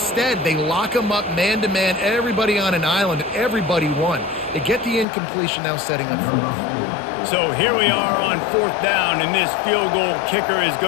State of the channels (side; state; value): right; drops out; at 5.1 s